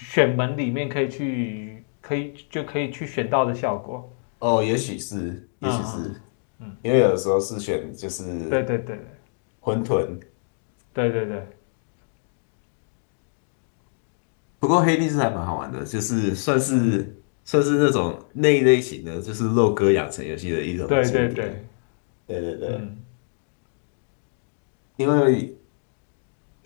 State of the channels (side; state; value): right; silent; digital silence